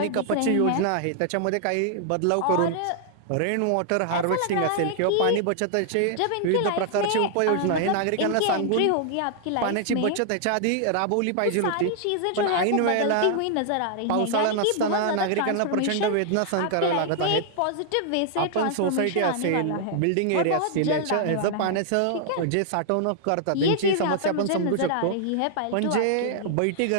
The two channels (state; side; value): different; both; correlation -0.01